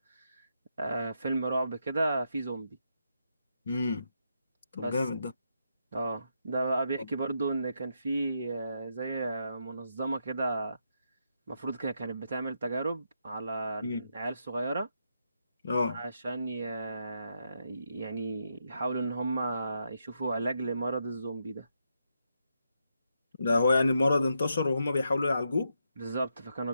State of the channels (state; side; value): inverted; both; correlation -0.81